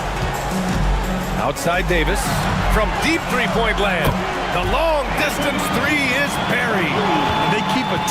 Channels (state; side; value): identical; both; correlation 1.00